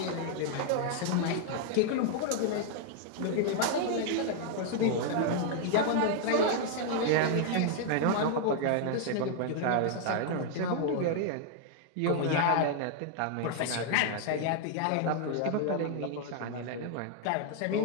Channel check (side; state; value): both; different; correlation 0.00